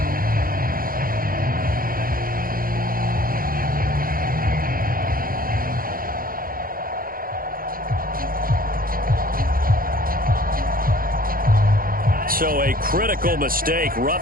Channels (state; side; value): late; left; 0.42 ms